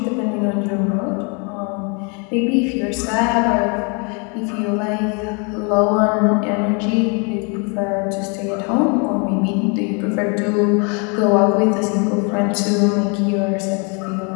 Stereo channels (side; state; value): right; quieter; 34.5 dB